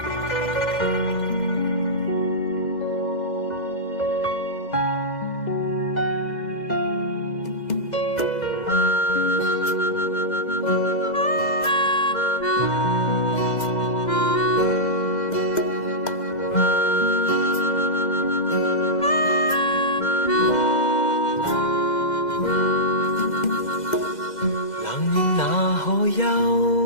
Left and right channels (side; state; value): right; late; 2.0 ms